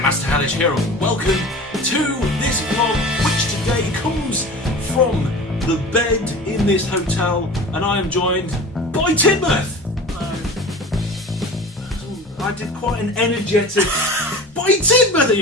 Hellish here, and welcome to this vlog, which today comes from the bed in this hotel, and I am joined by Tidmouth. I did quite an energetic by Tidmouth.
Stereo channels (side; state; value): both; normal; correlation 0.36